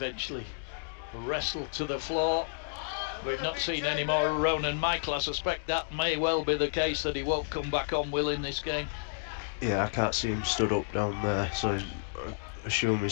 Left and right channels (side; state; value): right; silent; digital silence